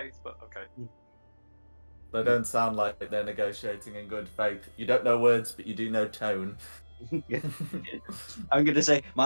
But okay. They don't sound like they're negotiating in good faith. You don't know words, but you do know tone. I'm going to say,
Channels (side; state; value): both; inverted; correlation -1.00